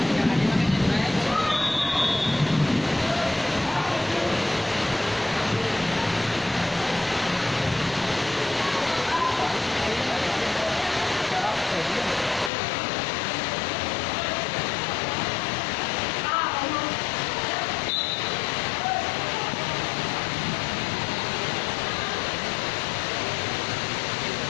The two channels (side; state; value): right; drops out; at 12.5 s